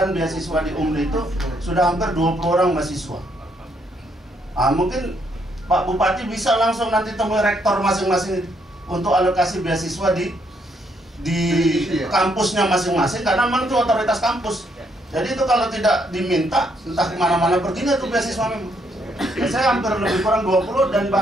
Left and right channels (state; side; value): normal; both; correlation 0.73